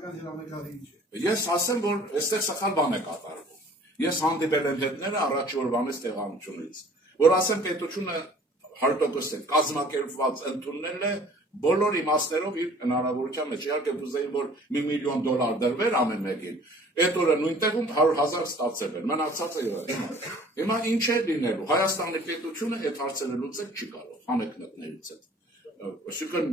հրամեկարի ինչ է։ Ես ասեմ, որ այստեղ սխալ բան է կատարվում։ Ես հանդիպել եմ հետները առաջի օրվանից տեղանությունից, որ ասեմ պետությունը 100% կազմակերպված ընդուննել է բոլոր իմաստներով իր հնարավորության մեջ։ Իհարկե կուզեի, որ $1 միլիոն դրվեր ամեն մեկին։ Այդ օրը նույն տեղում 100,000 ստացել էր։ Մնացածը եղել։ Հիմա ինչ է լինելու։ Հայաստանի պետությունը այդ հարցերը լուծել չի կարող, հանեկնետներից հետ։ Այսինքն,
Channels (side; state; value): both; normal; correlation 0.51